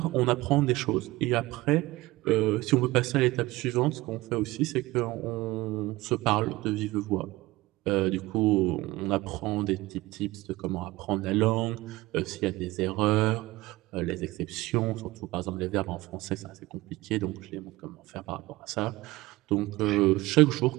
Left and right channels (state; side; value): quieter; left; 19.4 dB